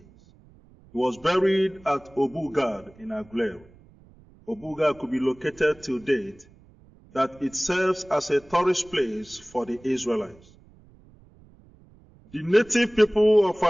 He was buried at Obugad in Aguleri. Obugad could be located till date, that it serves as a tourist place for the Israelites. The native people of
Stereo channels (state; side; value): noise; right; rumble, 26 dB below the sound